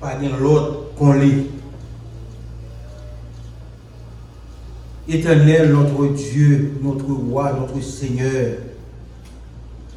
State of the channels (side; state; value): both; identical; correlation 1.00